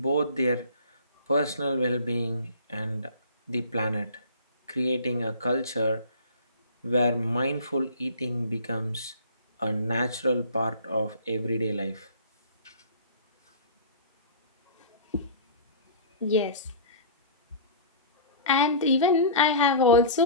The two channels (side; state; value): both; inverted; correlation -0.42